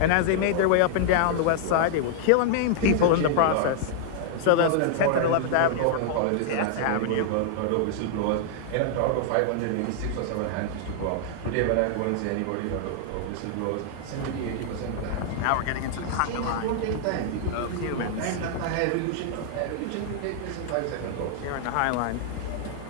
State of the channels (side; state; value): both; different; correlation -0.01